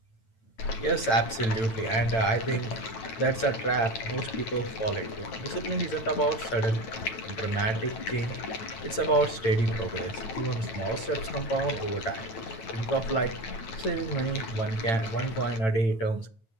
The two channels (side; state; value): right; late; 8.9 ms